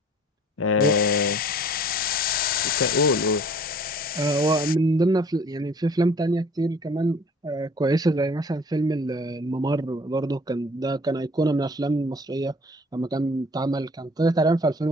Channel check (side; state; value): both; normal; correlation 0.51